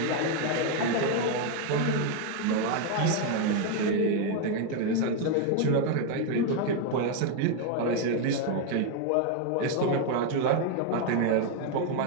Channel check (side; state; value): both; different; correlation 0.01